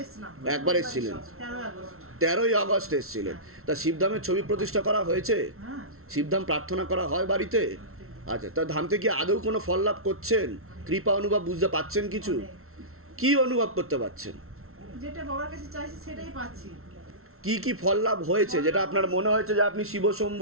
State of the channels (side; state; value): left; late; 0.62 ms